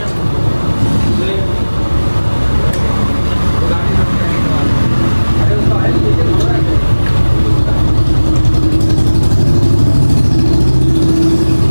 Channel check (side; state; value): both; inverted; correlation -1.00